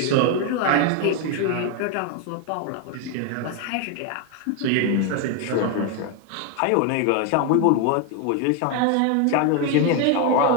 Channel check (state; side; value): different; both; correlation 0.01